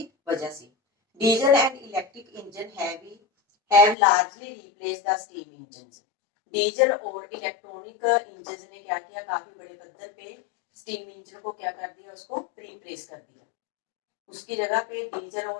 वजह से। Diesel and electric engine have largely replace the steam engine. Diesel और इलेक्ट्रॉनिक इंजन ने क्या किया? काफी बड़े पद्धर पे स्टीम इंजन को क्या कर दिया? उसको रिप्लेस कर दिया। उसकी जगह पे डीजल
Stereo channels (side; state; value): right; drops out; at 4.0 s